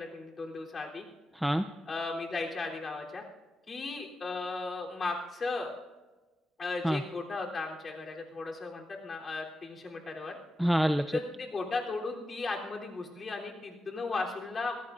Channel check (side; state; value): both; normal; correlation 0.90